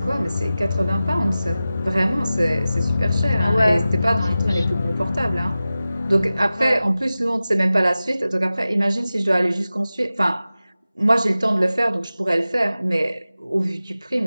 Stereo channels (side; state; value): both; inverted; correlation -0.95